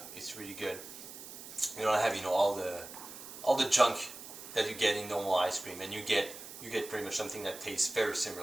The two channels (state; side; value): noise; right; hiss, 13 dB below the sound